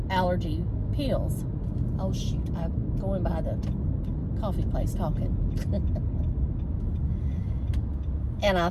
allergy pills. Oh shoot, I'm going by the coffee place talking. And I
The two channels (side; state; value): both; identical; correlation 1.00